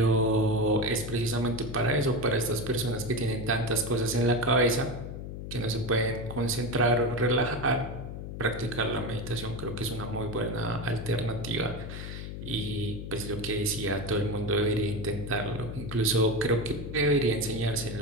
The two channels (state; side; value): noise; left; hum, 8 dB below the sound